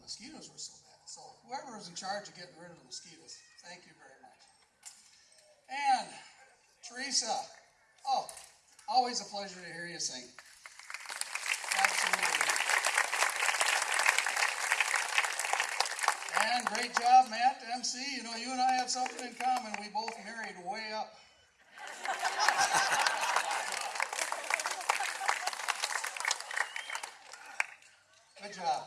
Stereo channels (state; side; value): identical; both; correlation 1.00